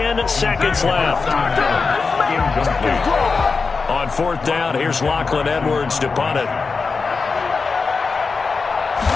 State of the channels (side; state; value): right; quieter; 4.6 dB